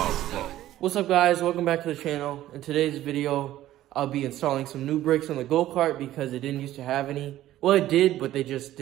What's up guys, welcome back to the channel. In today's video, I'll be installing some new brakes on the go-kart because it didn't used to have any. Well, it did, but they just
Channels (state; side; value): quieter; left; 13.9 dB